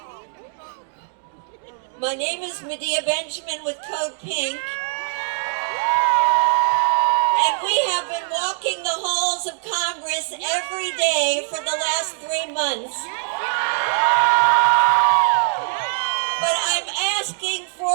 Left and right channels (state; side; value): silent; left; digital silence